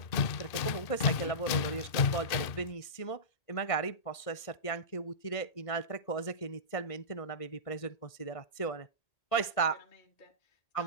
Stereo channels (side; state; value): right; late; 1.8 ms